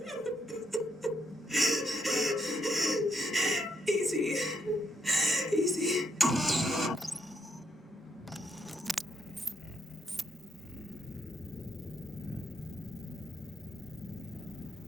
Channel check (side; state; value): both; normal; correlation 0.75